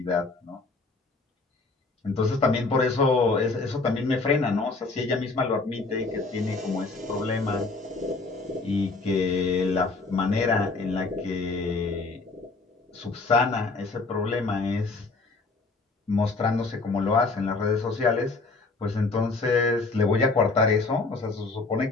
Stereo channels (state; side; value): quieter; right; 3.8 dB